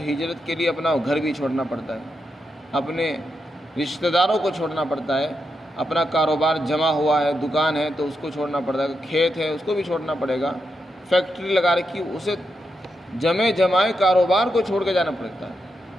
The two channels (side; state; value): both; normal; correlation 0.85